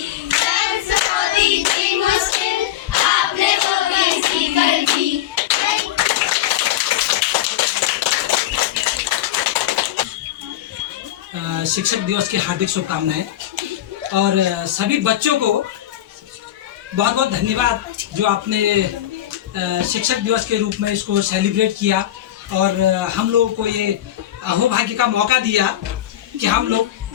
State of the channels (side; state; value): right; quieter; 12.6 dB